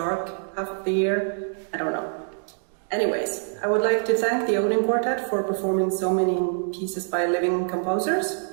half of the year. I don't know. Anyways, I would like to thank the Odin Quartet for performing so many pieces by living composers.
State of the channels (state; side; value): silent; left; digital silence